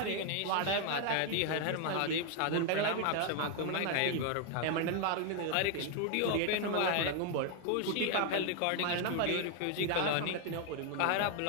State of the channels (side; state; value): both; different; correlation 0.00